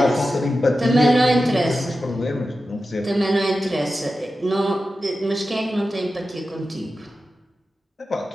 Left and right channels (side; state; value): both; normal; correlation 0.92